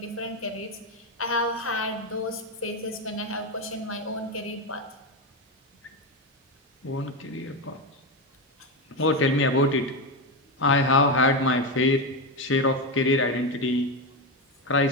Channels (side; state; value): both; normal; correlation 0.12